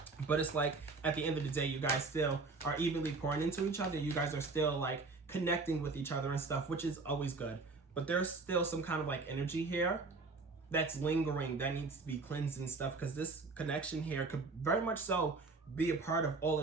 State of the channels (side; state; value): left; quieter; 3.9 dB